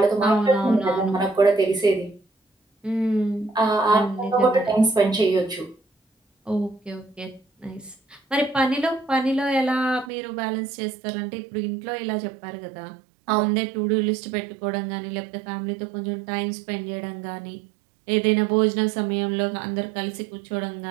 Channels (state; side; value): drops out; left; at 10.1 s